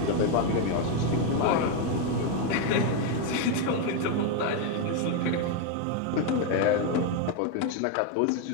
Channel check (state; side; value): different; both; correlation 0.02